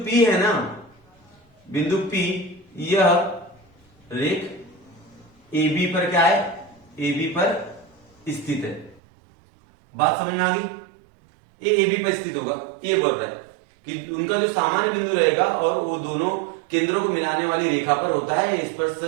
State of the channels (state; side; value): drops out; left; at 9.0 s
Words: है ना, बिंदु P यह रेख ए बी पर क्या है, ए बी पर स्थित है। बात समझ में आ गई, ये ए बी पर स्थित होगा। ये बोल रहा है कि उनका जो सामान्य बिंदु रहेगा और वो दोनों केंद्रों को मिलाने वाली रेखा पर होता है स्पर्श